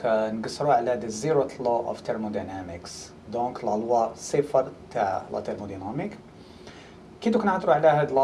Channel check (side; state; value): both; identical; correlation 1.00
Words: نقصروا على the Zeroth law of thermodynamics. دونك لا لوا صفر تاع لا thermodynamique. كي نهضروا على هاد